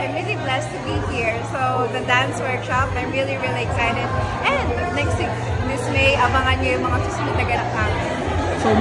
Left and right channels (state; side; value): identical; both; correlation 1.00